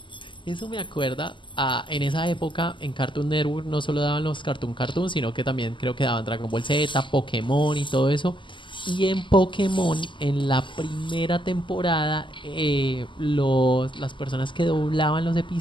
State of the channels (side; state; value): right; late; 0.24 ms